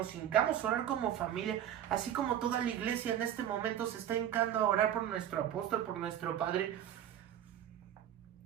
hincamos a orar como familia, así como toda la iglesia en este momento se está hincando a orar por nuestro apóstol, por nuestro padre.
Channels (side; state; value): left; quieter; 10.6 dB